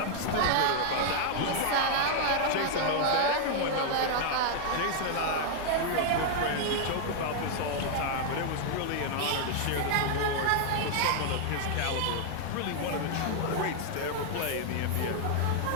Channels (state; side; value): different; both; correlation 0.00